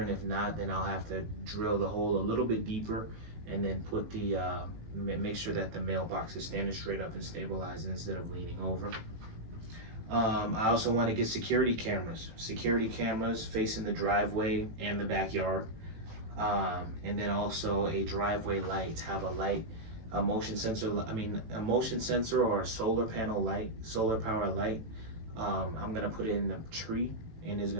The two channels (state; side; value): late; left; 18 ms